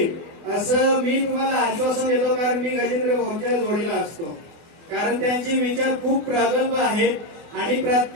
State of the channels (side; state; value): left; late; 23 ms